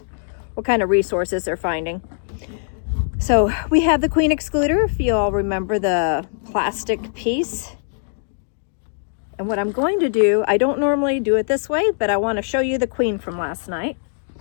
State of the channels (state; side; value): silent; right; digital silence